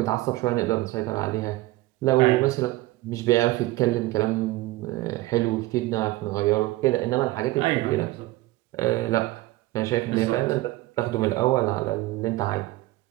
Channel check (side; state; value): left; quieter; 18.3 dB